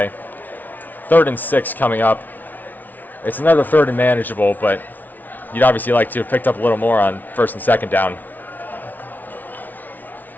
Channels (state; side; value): late; right; 0.082 ms